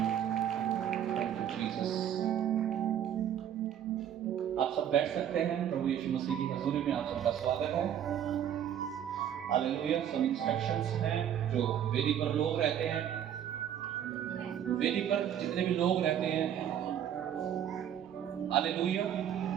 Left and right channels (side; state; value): left; quieter; 9.8 dB